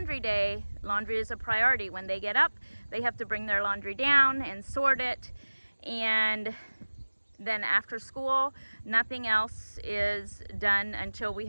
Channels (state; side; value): inverted; both; correlation -1.00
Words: day, laundry is a priority. When they get up, they have to bring their laundry down and sort it. And then after school, nothing else is done until we